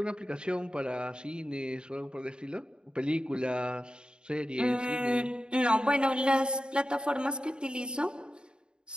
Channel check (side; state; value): left; late; 0.050 ms